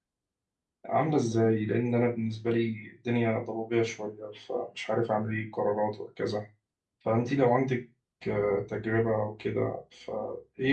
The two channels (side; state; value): both; identical; correlation 1.00